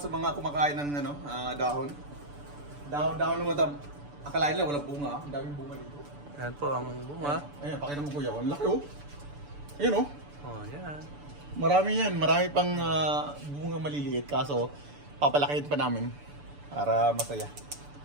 sa mga kumakain ng dahon. Dahon naman. Akalain lang, walang bunga. Ang daming bunga dito. Yan po ang bunga. Ayan, pakita mo kuya. Ang laki oh. Ayan oh. Oh, yan. Marami yan. Marami pang bunga maliliit. Kaso, papalakihin pa namin. Para masaya.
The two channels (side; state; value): left; late; 6.9 ms